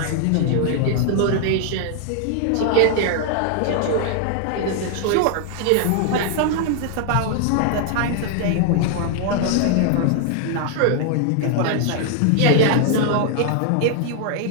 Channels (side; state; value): both; different; correlation 0.00